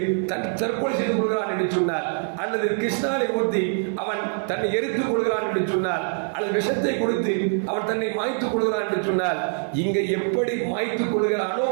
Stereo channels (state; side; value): silent; left; 62 dB below the other